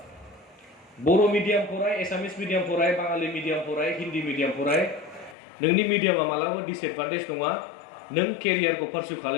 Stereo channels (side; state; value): right; drops out; at 5.4 s